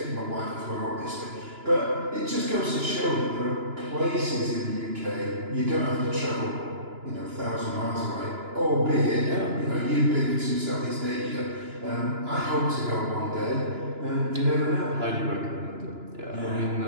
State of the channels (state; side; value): late; left; 2.9 ms